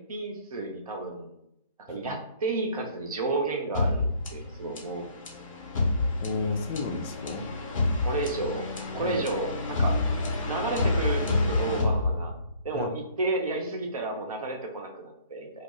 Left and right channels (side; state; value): both; inverted; correlation -0.57